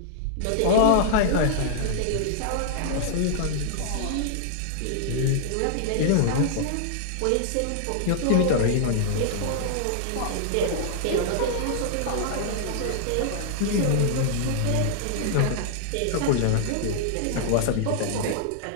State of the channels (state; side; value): different; both; correlation -0.01